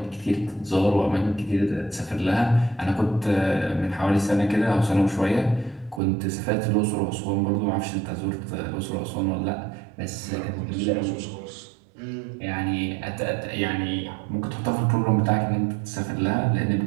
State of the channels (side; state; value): left; drops out; at 6.0 s